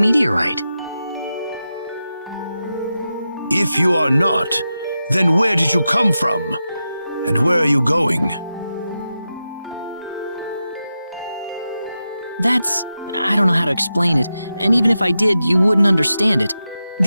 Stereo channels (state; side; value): inverted; both; correlation -0.90